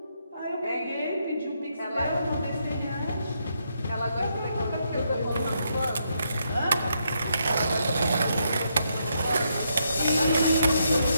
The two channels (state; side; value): inverted; both; correlation -0.78